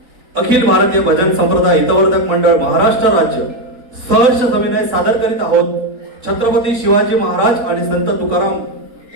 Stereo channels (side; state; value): left; late; 3.9 ms